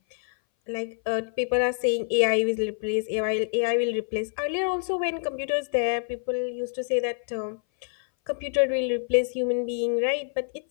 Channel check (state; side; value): silent; right; 58 dB below the other